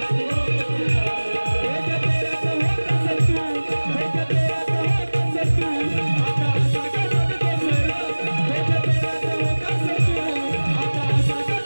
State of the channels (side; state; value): both; inverted; correlation -1.00